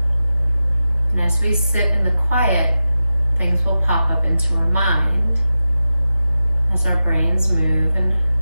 And as we sit in the quiet, things will pop up into our mind as our brains move and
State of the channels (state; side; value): inverted; both; correlation -0.92